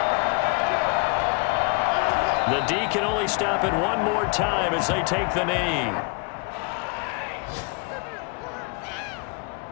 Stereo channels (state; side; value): quieter; right; 30.9 dB